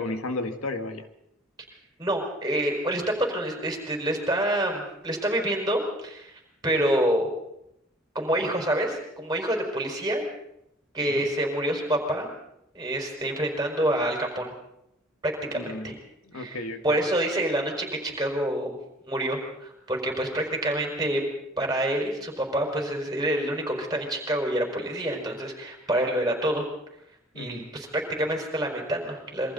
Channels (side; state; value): both; normal; correlation 0.51